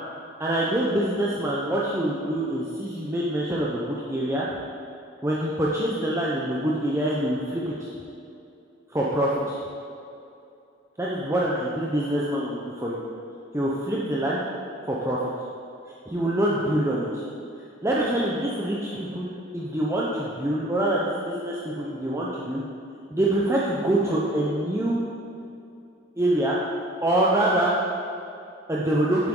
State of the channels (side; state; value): both; normal; correlation 0.52